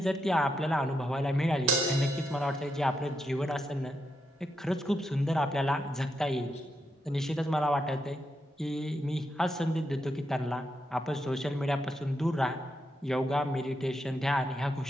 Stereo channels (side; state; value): both; normal; correlation 0.83